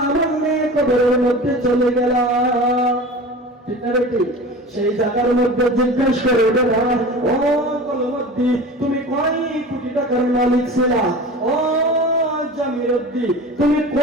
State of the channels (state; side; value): normal; both; correlation 0.36